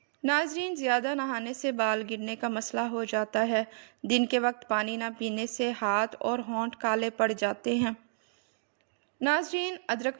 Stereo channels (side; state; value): left; silent; digital silence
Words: ناظرین، زیادہ نہانے سے بال گرنے کا مسئلہ ہو جاتا ہے۔ دن کے وقت پانی نہ پینے سے ہاتھ اور ہونٹ کالے پڑ جاتے ہیں۔ ناظرین،